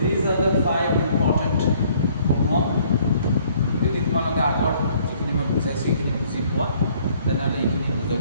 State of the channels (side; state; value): both; inverted; correlation -0.61